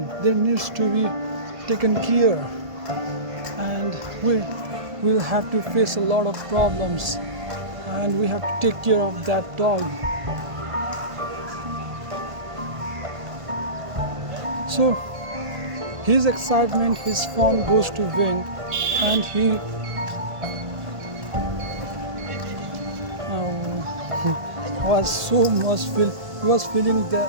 they needs to be taken care, and we will have to face a lot of problems, and we have to take care of that dog. So his excitement, his fun goes to vain, and he was feeling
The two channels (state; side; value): late; left; 1.5 ms